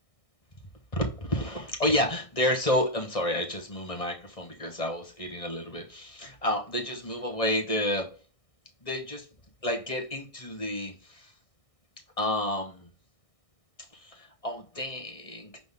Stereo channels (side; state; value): right; late; 1.6 ms